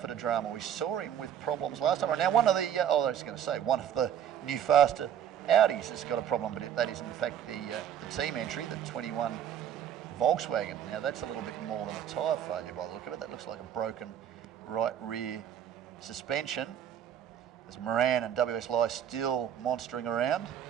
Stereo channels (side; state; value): left; quieter; 9.5 dB